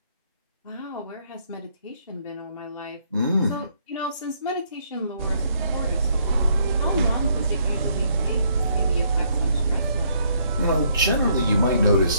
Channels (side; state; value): both; inverted; correlation -0.69